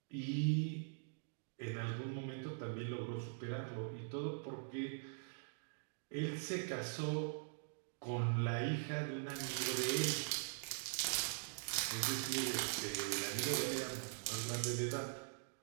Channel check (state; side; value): silent; left; digital silence